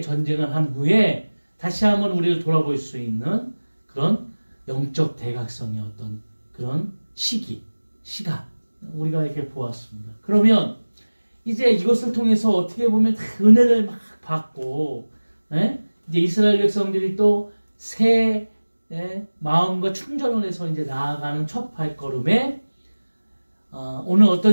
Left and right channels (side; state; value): both; inverted; correlation -1.00